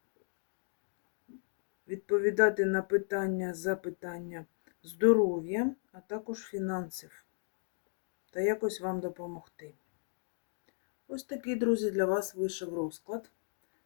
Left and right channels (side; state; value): right; silent; digital silence